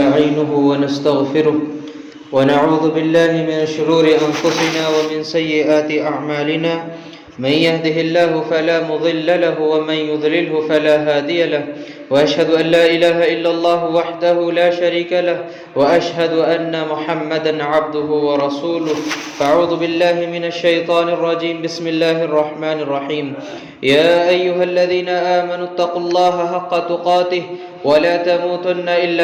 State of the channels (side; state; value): both; identical; correlation 1.00